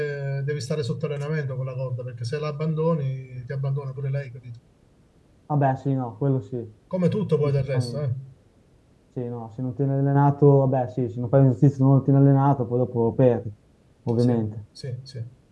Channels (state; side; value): identical; both; correlation 1.00